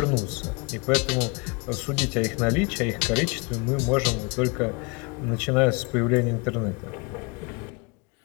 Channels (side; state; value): right; quieter; 29.5 dB